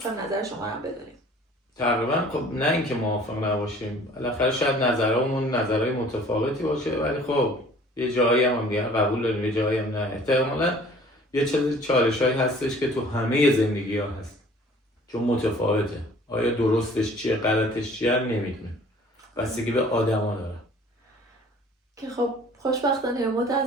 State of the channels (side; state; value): both; normal; correlation 0.51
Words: نظر شما هم بدونیم. تقریبا خب نه اینکه موافق نباشیم، بالاخره شاید نظرمون نظرهای متفاوتی باشه، ولی خب یه جایی هم دیگه قبول داریم، یه جایی هم نه. احتمالاً یه چالشایی هستش که تو همه زندگی‌ها هست، چون متفاوته. آیا درستش چیه، غلطش چیه نمیدونیم. بستگی به آدما داره. که خب خوشبختانه یا